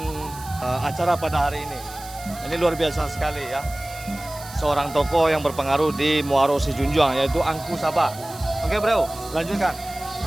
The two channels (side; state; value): right; noise; hiss, 16 dB below the sound